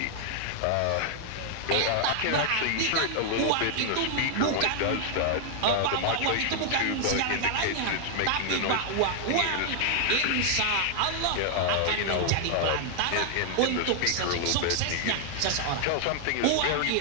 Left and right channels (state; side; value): different; both; correlation 0.00